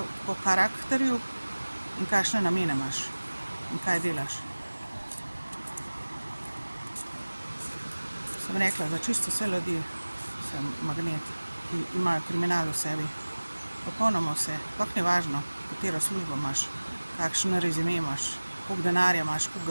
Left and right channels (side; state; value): both; inverted; correlation -1.00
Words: Po karakterju in kakšne namene imaš in kaj delaš. Sem rekla, za čisto vse ljudi sem magnet, ki imajo kriminal v sebi. Popolnoma vse, sploh ni važno, katero službo imaš, kakšen rezime imaš, koliko denarja imaš, koliko